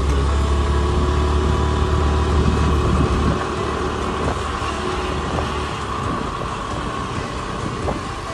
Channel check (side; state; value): both; identical; correlation 1.00